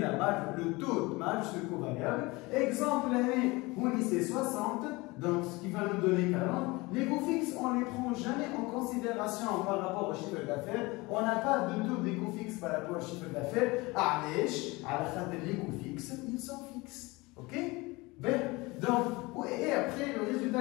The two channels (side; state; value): right; quieter; 23.4 dB